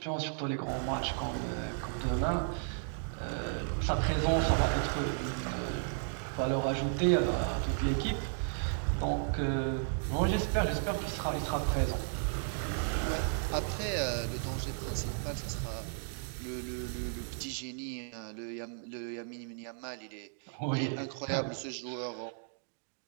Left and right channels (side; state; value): left; silent; digital silence